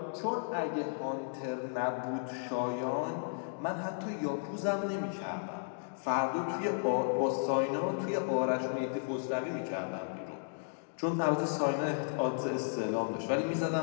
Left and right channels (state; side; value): silent; right; digital silence